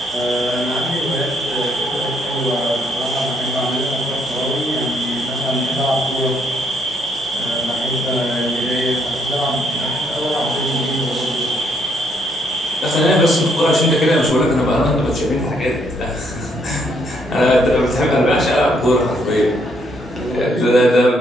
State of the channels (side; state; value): both; normal; correlation 0.72